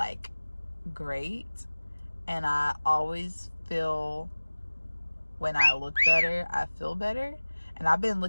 great. And I always feel when I look better, I feel better. And I've been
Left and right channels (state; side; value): inverted; both; correlation -1.00